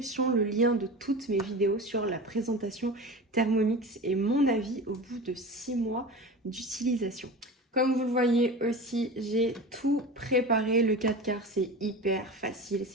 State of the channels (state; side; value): normal; both; correlation 0.31